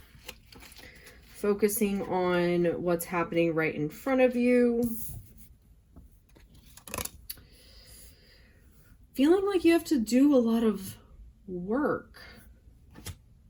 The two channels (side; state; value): both; identical; correlation 1.00